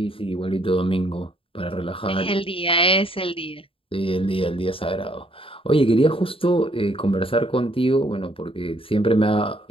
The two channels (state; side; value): late; right; 0.26 ms